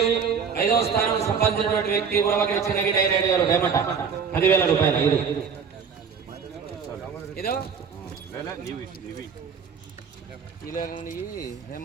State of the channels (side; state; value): left; quieter; 6.4 dB